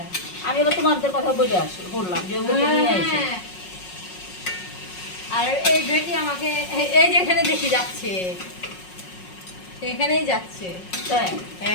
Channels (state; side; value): late; right; 5.5 ms